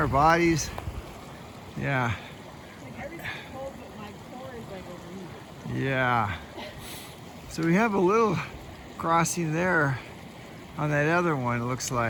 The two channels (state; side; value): identical; both; correlation 1.00